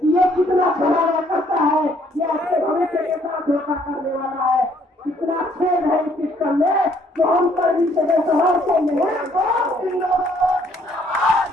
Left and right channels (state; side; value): normal; both; correlation 0.65